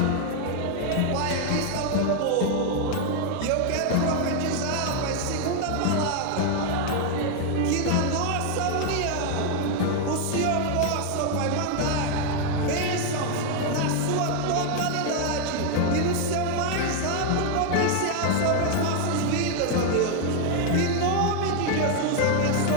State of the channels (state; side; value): different; both; correlation 0.00